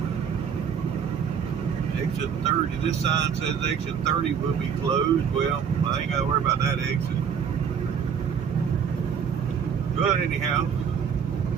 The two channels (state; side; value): quieter; left; 7.3 dB